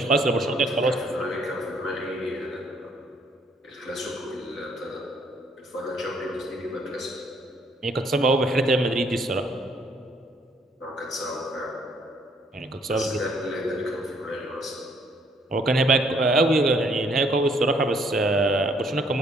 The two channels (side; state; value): both; normal; correlation 0.65